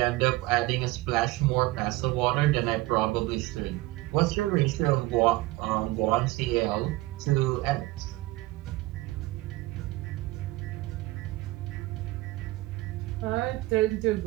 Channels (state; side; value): quieter; left; 19.3 dB